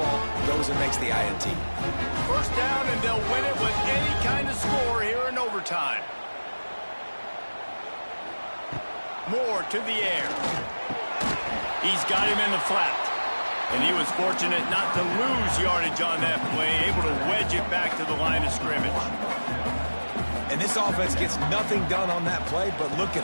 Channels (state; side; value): inverted; both; correlation -1.00